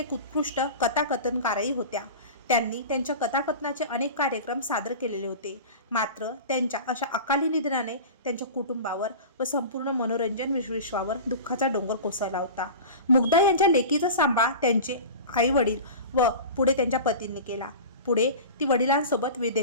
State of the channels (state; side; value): inverted; both; correlation -0.33